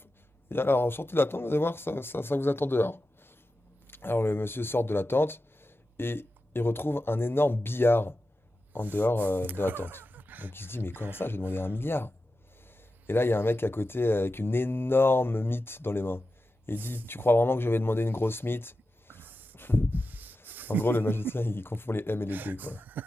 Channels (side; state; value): both; normal; correlation 0.92